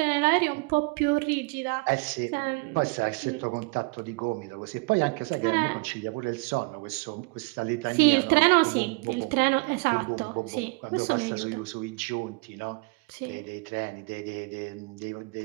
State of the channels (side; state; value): left; quieter; 29.4 dB